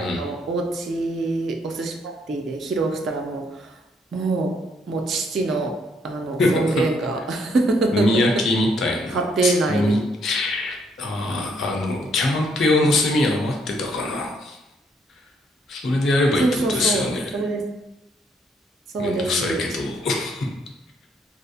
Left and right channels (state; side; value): normal; both; correlation 0.70